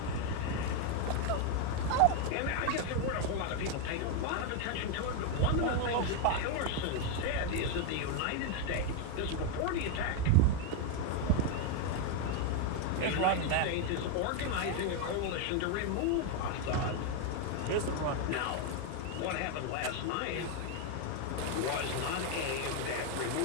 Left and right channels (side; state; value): both; different; correlation 0.01